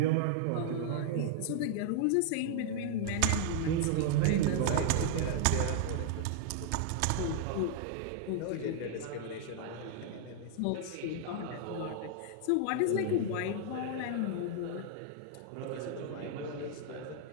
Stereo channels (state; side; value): different; both; correlation 0.00